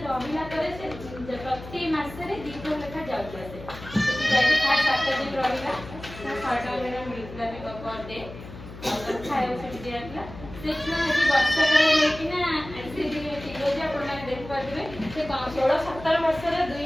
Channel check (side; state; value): left; noise; hum, 14 dB below the sound